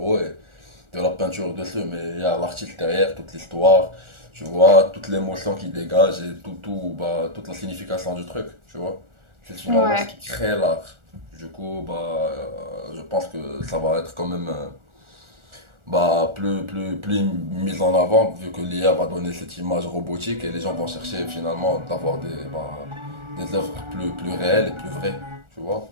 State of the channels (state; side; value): late; left; 1.4 ms